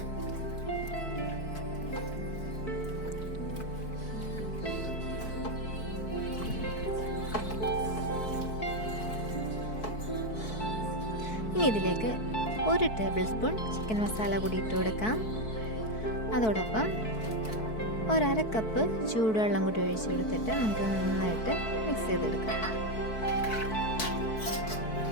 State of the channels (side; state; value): right; late; 4.6 ms